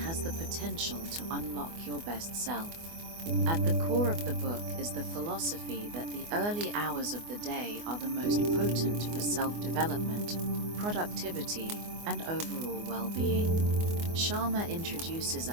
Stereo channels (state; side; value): late; left; 24 ms